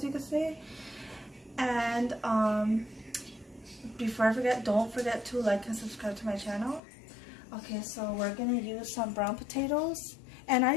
you could say. And before I forget, don't forget to like and subscribe to my channel. Okay, so we're going to use some brown potatoes, and I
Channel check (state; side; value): drops out; right; at 6.8 s